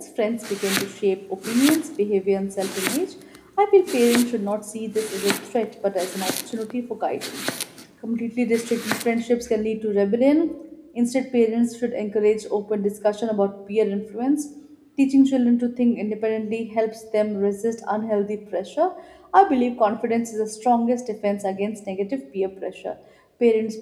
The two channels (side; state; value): both; identical; correlation 1.00